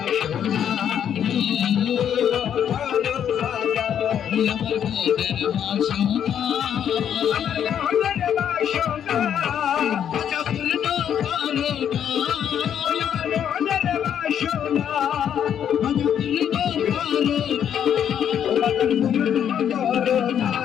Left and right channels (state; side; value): quieter; right; 9.1 dB